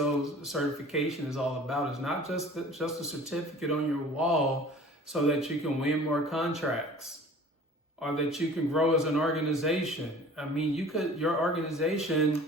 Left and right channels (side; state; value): both; normal; correlation 0.45